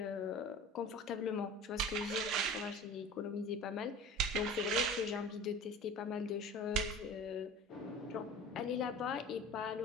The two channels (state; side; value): normal; both; correlation 0.38